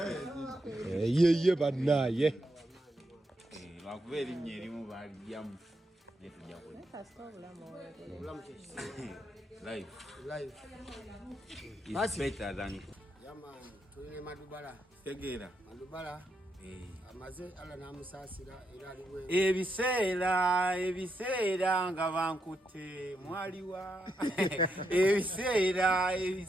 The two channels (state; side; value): normal; both; correlation 0.82